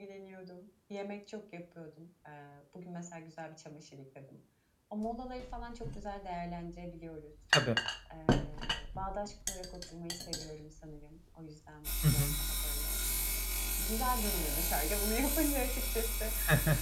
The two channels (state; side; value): identical; both; correlation 1.00